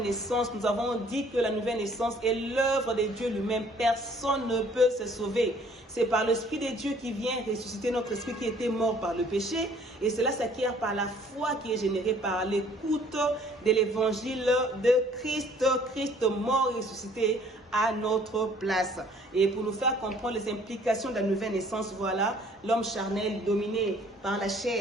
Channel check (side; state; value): both; normal; correlation 0.57